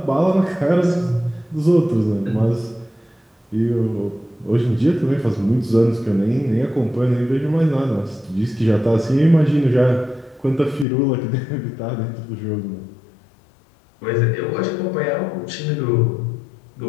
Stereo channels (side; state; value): right; drops out; at 10.9 s